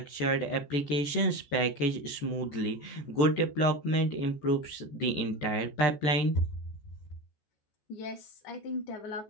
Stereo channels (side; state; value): right; late; 14 ms